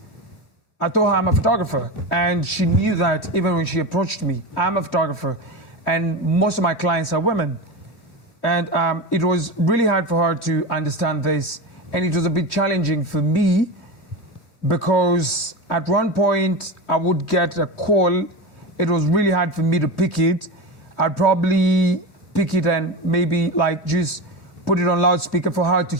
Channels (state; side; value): late; right; 3.1 ms